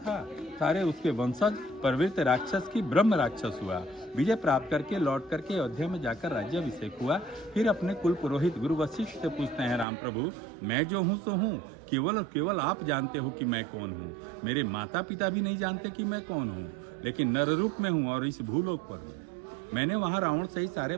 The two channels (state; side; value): drops out; left; at 9.9 s